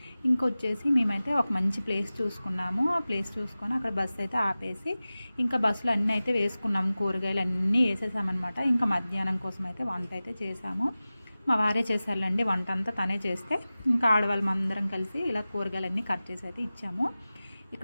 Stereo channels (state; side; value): inverted; both; correlation -0.97